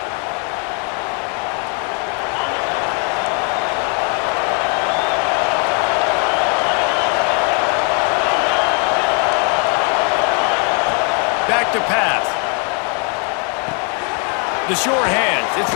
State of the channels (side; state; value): right; quieter; 39.2 dB